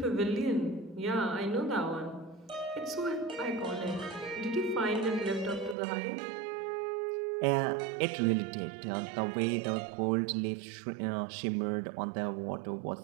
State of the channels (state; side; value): drops out; left; at 5.8 s